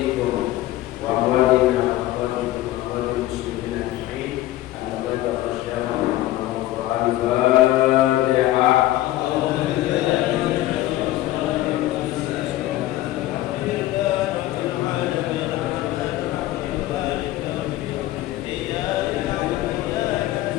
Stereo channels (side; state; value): right; quieter; 15.5 dB